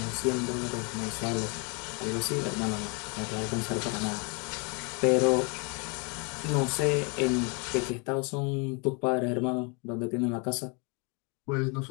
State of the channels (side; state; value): right; quieter; 33.0 dB